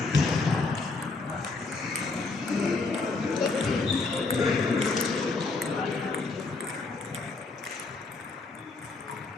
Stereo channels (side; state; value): right; quieter; 3.8 dB